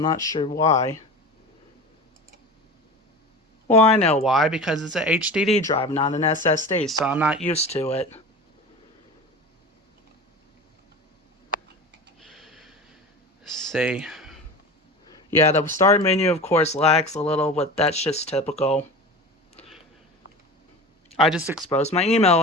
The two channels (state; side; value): normal; both; correlation 0.32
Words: not sure why. Well, I know why. Because it's an HDD drive, not an SSD. So I'm not used to it. Let's see. Yeah, the start menu, of course, lags a little, but that's just typical. I just exposed my email